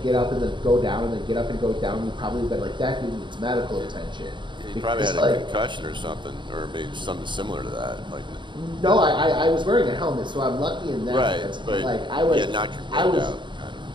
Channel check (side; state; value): left; late; 0.23 ms